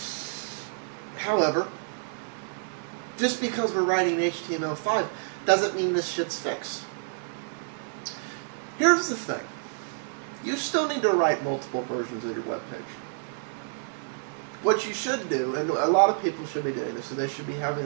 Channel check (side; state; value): left; silent; 59 dB below the other